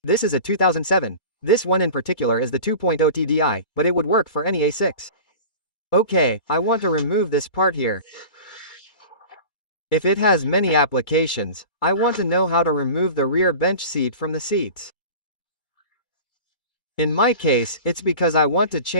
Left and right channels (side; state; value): right; late; 2.2 ms